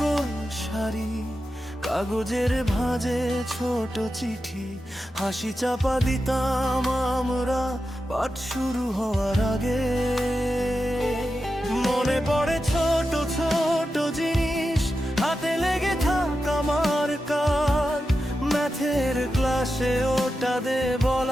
শাড়ি, কাগজের ভাঁজে ছোট চিঠি, হাসি চাপা দিতাম আমরা পাঠ শুরু হওয়ার আগে। মনে পড়ে ছোট ছোট জিনিস, হাতে লেগে থাক আমার কাজ, ম্যাথের ক্লাসে ওটা দে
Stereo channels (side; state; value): both; normal; correlation 0.90